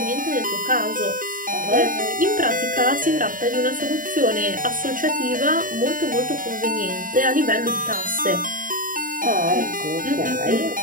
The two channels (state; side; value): late; left; 0.40 ms